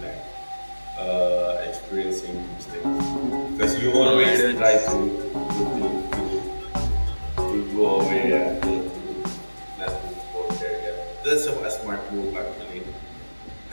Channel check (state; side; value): inverted; both; correlation -1.00